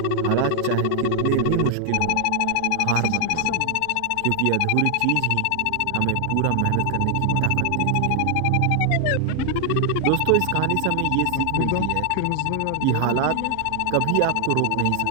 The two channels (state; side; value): different; both; correlation 0.00